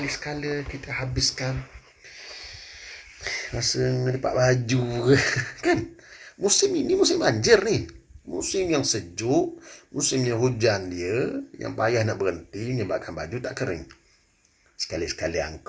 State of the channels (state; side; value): identical; both; correlation 1.00